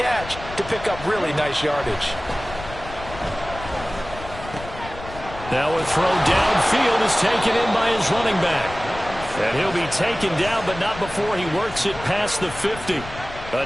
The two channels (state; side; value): noise; left; rumble, 13 dB below the sound